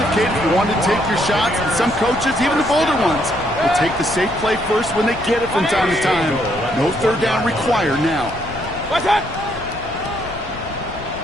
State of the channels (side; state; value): left; noise; rumble, 13 dB below the sound